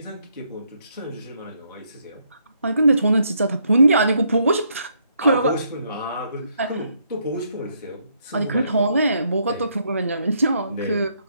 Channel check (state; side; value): inverted; both; correlation -0.73